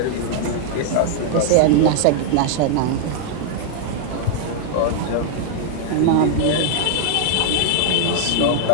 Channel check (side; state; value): both; different; correlation -0.01